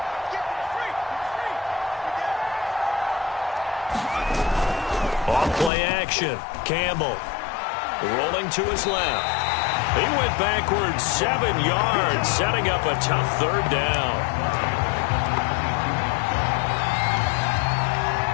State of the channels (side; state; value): right; drops out; at 5.7 s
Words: Off-play action. Campbell rolling to his left. He went backwards 7 yards, setting up a tough 3rd down.